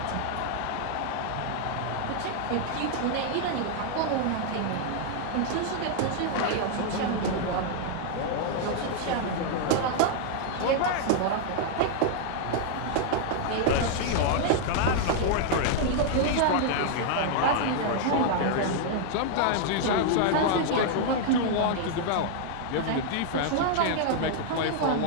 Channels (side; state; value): both; different; correlation 0.00